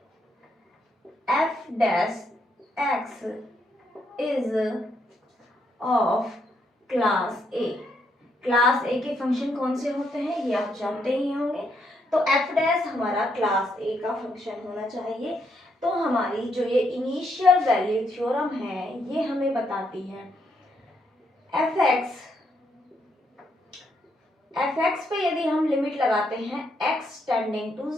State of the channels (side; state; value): both; normal; correlation 0.76